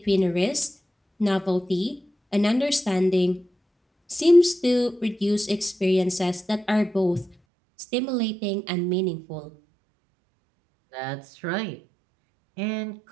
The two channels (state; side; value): drops out; left; at 7.4 s